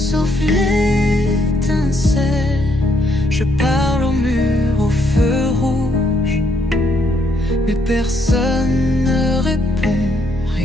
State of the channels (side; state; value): both; normal; correlation 0.72